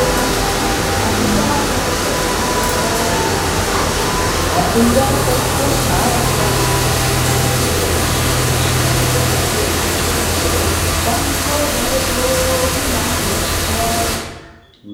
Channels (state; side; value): identical; both; correlation 1.00